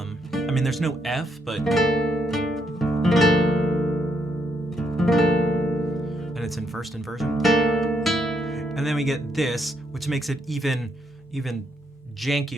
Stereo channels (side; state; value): both; normal; correlation 0.75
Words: there's no F, but and it's in first inversion. And then we get this, which makes it even